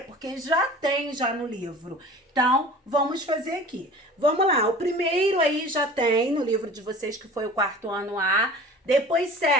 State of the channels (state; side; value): normal; both; correlation 0.41